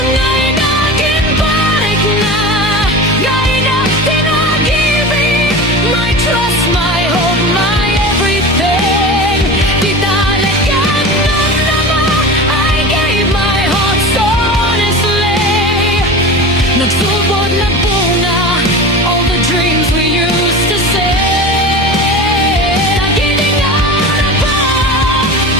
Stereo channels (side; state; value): both; normal; correlation 0.31